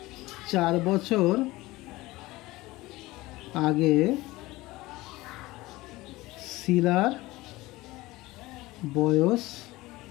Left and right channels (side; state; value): right; quieter; 19.5 dB